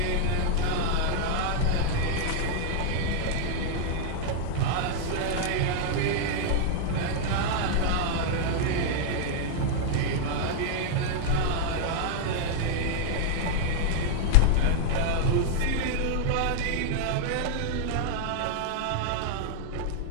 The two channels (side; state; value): both; different; correlation -0.01